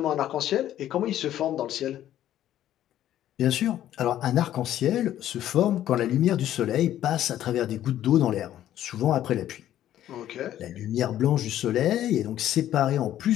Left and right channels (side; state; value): right; quieter; 12.2 dB